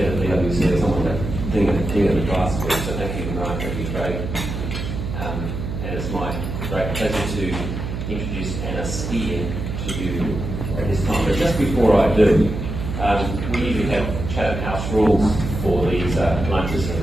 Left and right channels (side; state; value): right; noise; hum, 5 dB below the sound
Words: of the PwC or someone to think of the class for. So thank you, Mark. Thank you, Craig. And it's my great pleasure to introduce Anna Speer to you at this time. But just before I do, we usually have Chatham House rules for these lunches